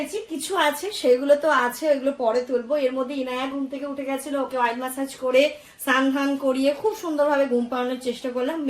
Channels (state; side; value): identical; both; correlation 1.00